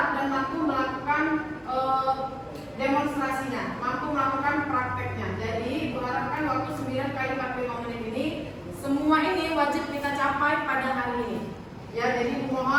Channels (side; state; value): both; identical; correlation 1.00